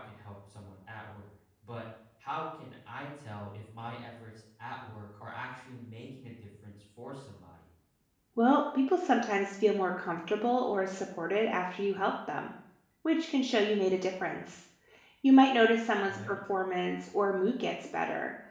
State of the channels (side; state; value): both; identical; correlation 1.00